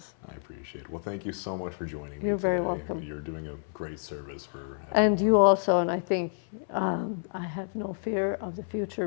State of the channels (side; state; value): right; silent; 58 dB below the other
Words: I appreciate it. Well, thank you so much for joining me today. You're very welcome. You're doing a great service for everyone. And you also, and I think I have no fear of the future